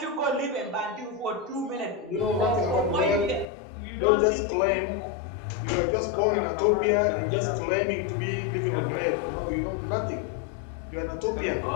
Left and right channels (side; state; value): right; drops out; at 3.5 s